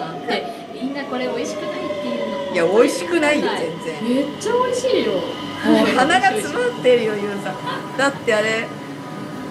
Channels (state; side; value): identical; both; correlation 1.00